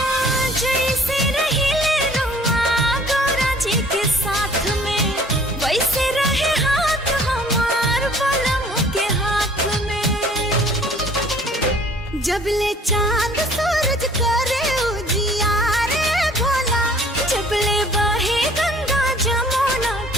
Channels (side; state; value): both; normal; correlation 0.53